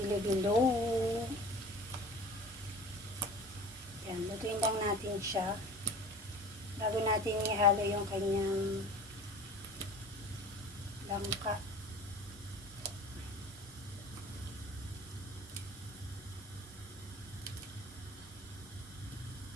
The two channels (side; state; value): both; normal; correlation 0.40